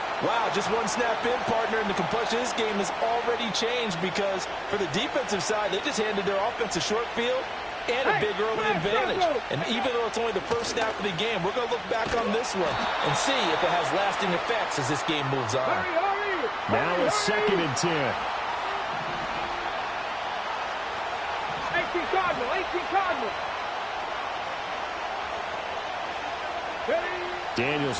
Wow, just one snap in, partner, and the complexion of this game has already changed because for the defensive side, they just handed their offense a short field and a big early advantage. And even though it's only the first snap of the game, we're going to look back on this one and see if it has lasting effects as this game moves on. Now it's 2nd and 10. 18 Cardinal. Daniels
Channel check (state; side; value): identical; both; correlation 1.00